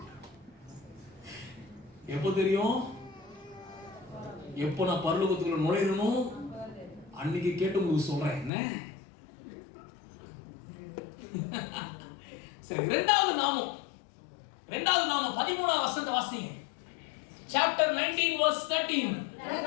எப்போ தெரியும்? எப்போ நான் பரலோகத்துக்குள்ள நுழையணும் அன்னைக்கு கேட்டு உங்களுக்கு சொல்றேன். என்ன சரி, இரண்டாவது நாமம் 13வது வசனத்தை வாசிங்க. Chapter 19 verse 13.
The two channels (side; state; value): right; drops out; at 8.5 s